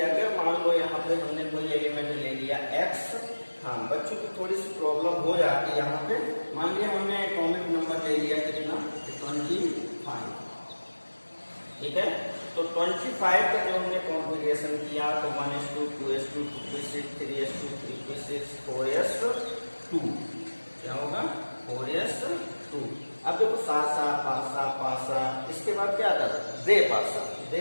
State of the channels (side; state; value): both; inverted; correlation -1.00